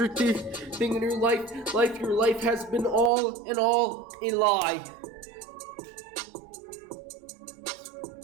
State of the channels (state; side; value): drops out; left; at 3.1 s